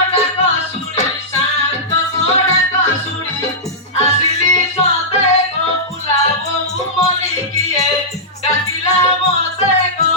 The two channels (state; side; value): normal; both; correlation -0.13